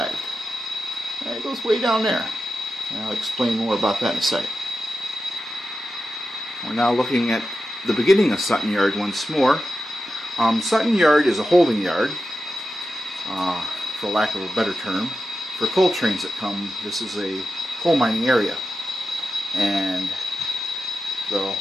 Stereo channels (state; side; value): normal; both; correlation 0.91